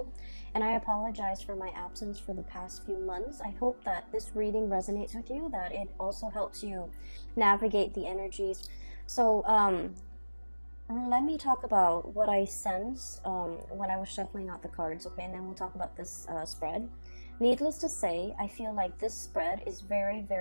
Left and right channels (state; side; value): inverted; both; correlation -1.00